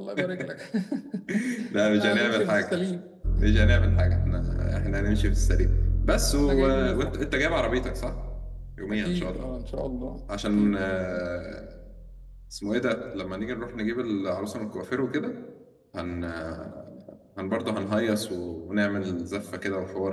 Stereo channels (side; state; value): both; identical; correlation 1.00